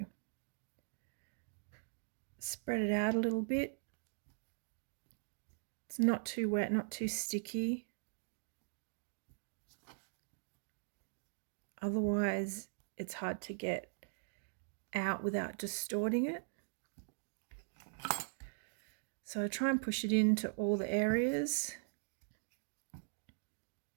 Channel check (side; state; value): left; silent; digital silence